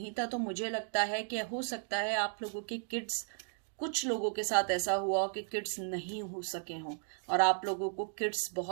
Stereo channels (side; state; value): left; silent; 54 dB below the other